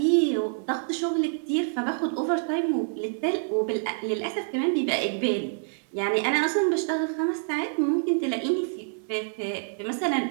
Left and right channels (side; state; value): left; silent; digital silence